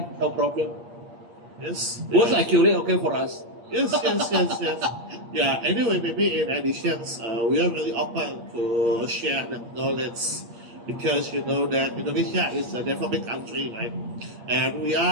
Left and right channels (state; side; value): late; left; 8.5 ms